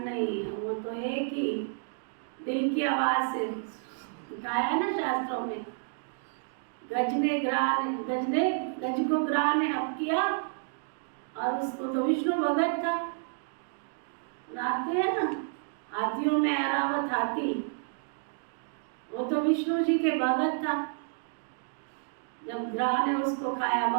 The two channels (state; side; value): silent; left; digital silence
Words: नहीं है। वो तो एक ही दिल की आवाज से कहा है ना शास्त्रों में, गज को ग्राह ने हप किया। और उसको तो विष्णु भगत था, सुनाते हैं ना, हाथियों में ऐरावत हाथी, वो तो विष्णु जी के भगत था। जब ग्राह ने उसको खाया,